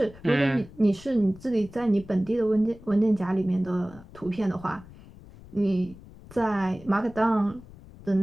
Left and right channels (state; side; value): noise; left; rumble, 20 dB below the sound